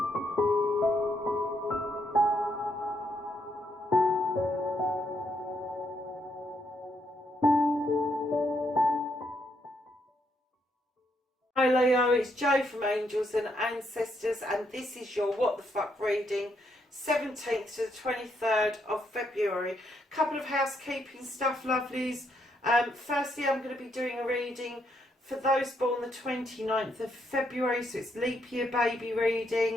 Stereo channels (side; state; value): both; normal; correlation 0.76